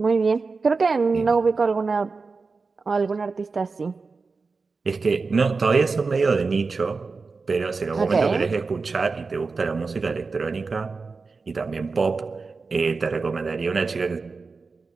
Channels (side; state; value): left; quieter; 4.3 dB